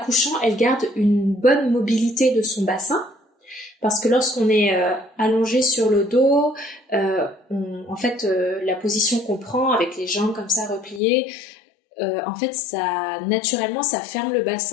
elle garde une bonne mobilité de son bassin. Parce que lorsqu'on est allongé sur le dos, la position qu'on prend avec les jambes comme ça repliées, en fait, naturellement, ça ferme le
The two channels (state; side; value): drops out; right; at 11.0 s